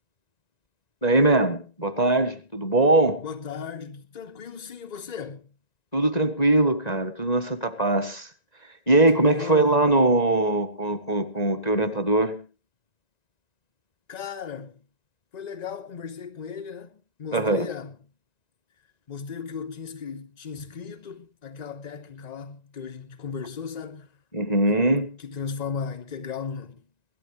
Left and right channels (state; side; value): late; right; 1.9 ms